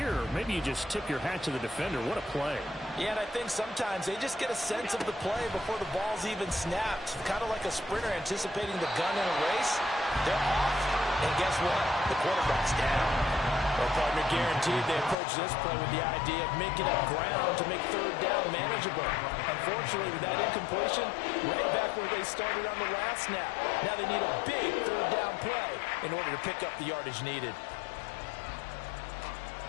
maybe you just tip your hat to the defender. What a play. Yeah, and I think sometimes they just get a sense of the play before the ball's even snapped. Kind of like a sprinter anticipating the gun in a race. They're off, and guess what? The quarterback's down. Well, partner, guaranteed they approach this play with the idea of making up ground to make third down manageable. Unfortunately, with that incompletion, right back where they started on the last snap. Now they need a big third down play in order to pick up the yardage needed.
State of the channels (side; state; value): right; drops out; at 15.2 s